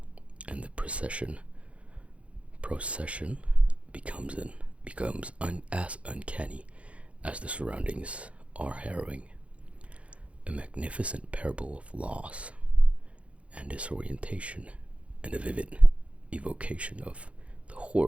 and the procession becomes as uncanny as the surroundings are harrowing. A magnificent parable of loss and disorientation, and a vivid evocation of the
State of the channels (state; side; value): late; left; 0.063 ms